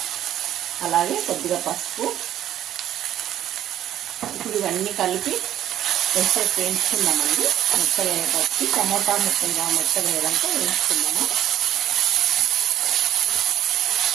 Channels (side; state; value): left; quieter; 11.8 dB